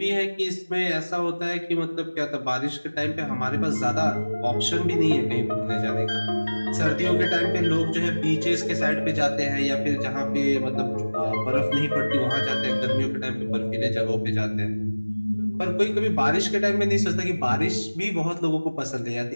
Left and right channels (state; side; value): inverted; both; correlation -1.00